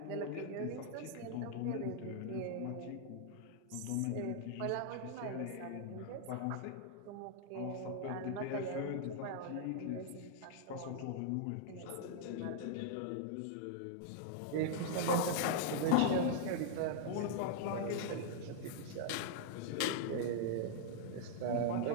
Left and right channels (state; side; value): different; both; correlation -0.01